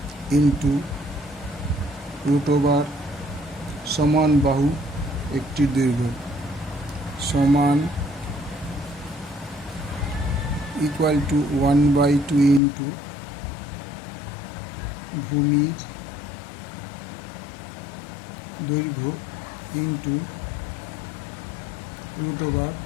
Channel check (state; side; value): drops out; right; at 12.6 s